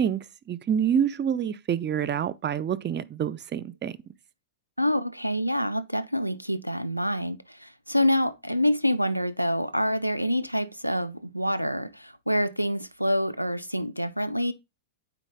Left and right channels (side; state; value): both; inverted; correlation -0.60